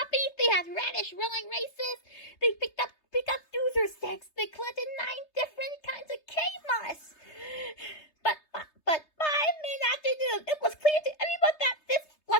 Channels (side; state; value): right; late; 3.3 ms